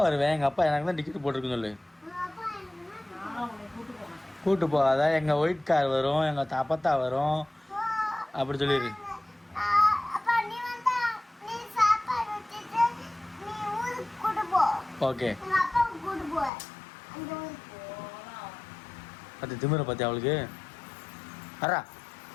வருவேன், எங்கள் அப்பா எனக்கு தான் டிக்கெட் போட்டிருக்குன்னு சொல்லு. கூட்டு போ. அதான் எங்கள் ஒயிட் கார் வரும், எங்கள் தப்பத்தா வரும், அப்படி சொல்லிடு. ஓகே. பத்து திமிரை பத்தி அவளுக்கு. அரா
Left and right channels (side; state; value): right; drops out; at 16.5 s